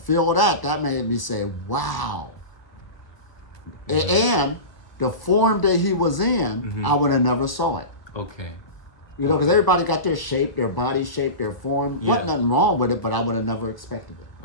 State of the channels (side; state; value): right; late; 1.0 ms